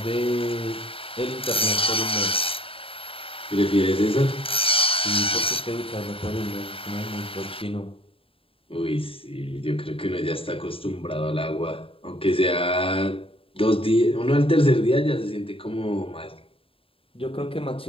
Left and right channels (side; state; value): right; late; 0.27 ms